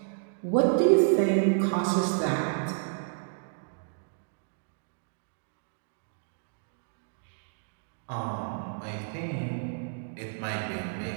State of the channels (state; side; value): silent; left; digital silence